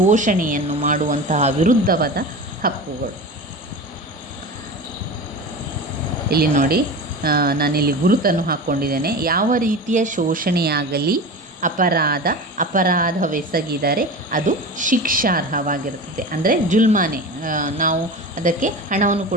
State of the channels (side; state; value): both; normal; correlation 0.30